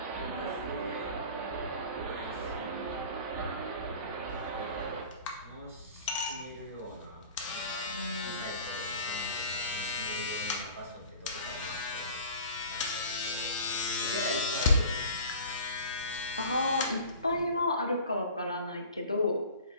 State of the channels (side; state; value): both; inverted; correlation -0.42